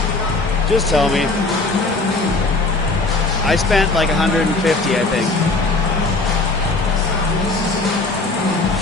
Just tell me. I spent like 150, I think.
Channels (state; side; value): quieter; right; 3.3 dB